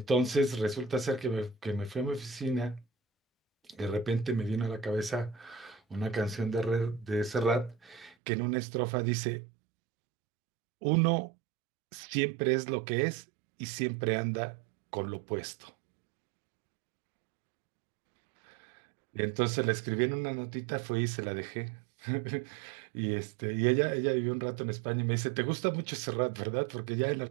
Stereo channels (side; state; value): left; drops out; at 8.2 s